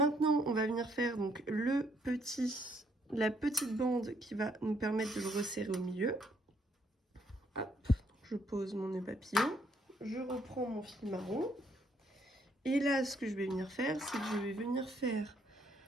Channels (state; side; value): normal; both; correlation 0.69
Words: on va venir faire donc la petite bande qui va nous permettre de le resserrer au milieu. Hop, je pose mon nœud papillon. Je reprends mon fil marron. Et là, ce que je vais venir faire, c'est que je vais venir faire